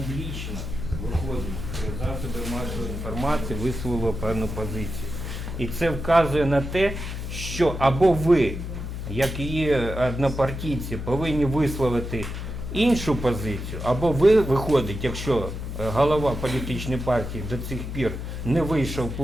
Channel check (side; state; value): left; noise; hum, 6 dB below the sound